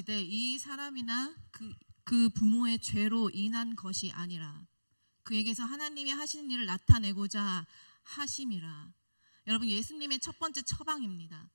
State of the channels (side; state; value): both; inverted; correlation -1.00